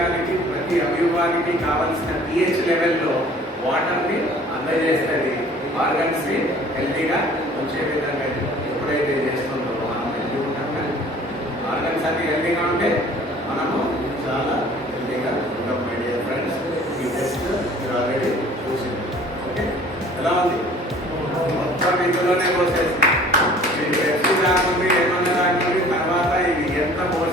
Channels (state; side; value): normal; both; correlation 0.51